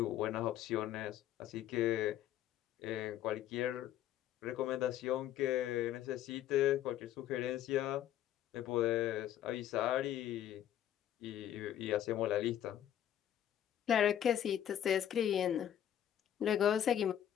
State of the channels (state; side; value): quieter; right; 11.1 dB